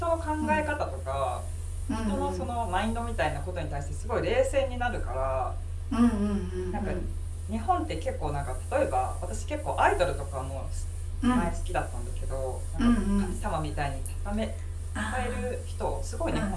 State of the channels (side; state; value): both; identical; correlation 1.00